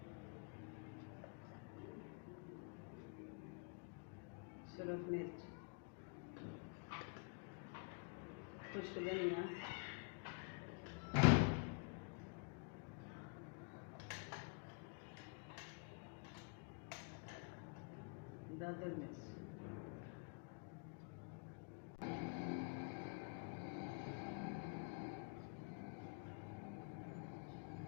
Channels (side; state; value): right; quieter; 36.4 dB